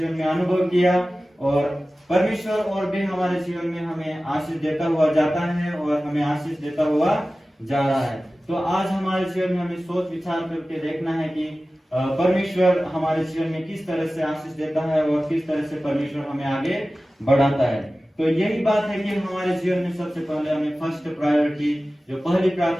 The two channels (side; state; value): both; normal; correlation 0.96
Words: में अनुभव किया और परमेश्वर और भी हमारे जीवन में हमें आशीष देता हुआ जाता है और हमें आशीष देता हुआ जा रहा है। तो आज हमारे जीवन में हमें सोच विचार करके देखना है कि परमेश्वर हमारे जीवन में किस तरह से आशीष देता है और किस तरह से परमेश्वर हमें आगे बढ़ाता है। तो यही बात है कि हमारे जीवन में सबसे पहले हमें फर्स्ट प्रायोरिटी, जो पहली